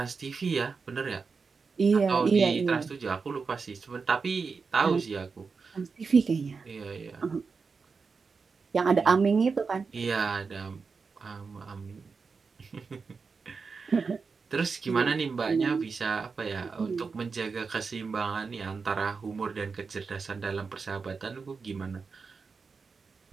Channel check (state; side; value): quieter; left; 4.9 dB